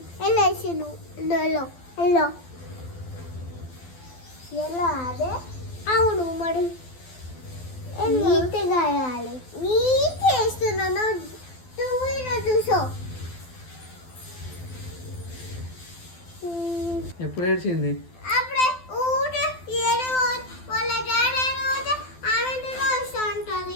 ఎల్లో వేసాను. ఎల్లో ఎల్లో ఎల్లో అదే అవును. మరి నీట్గా వేయాలి. నీట్ వేస్తున్నాను. నువ్వు చూసో ఎప్పుడు ఏడ్చింది? అప్పుడే ఊట ఏడు వాళ్ళ డాడీ ఊట ఆమెతో వస్తూ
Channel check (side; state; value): right; late; 12 ms